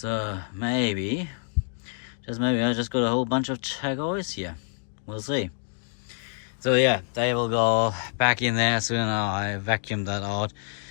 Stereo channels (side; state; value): right; silent; digital silence